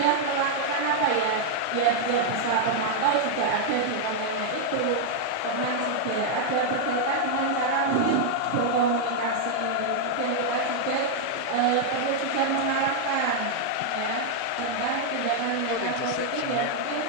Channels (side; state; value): both; different; correlation 0.00